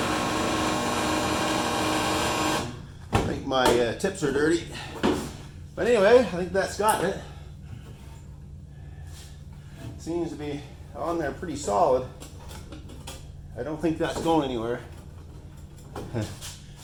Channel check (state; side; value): identical; both; correlation 1.00